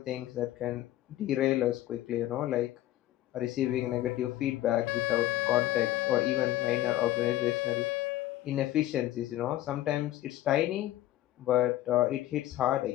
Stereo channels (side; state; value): right; quieter; 14.5 dB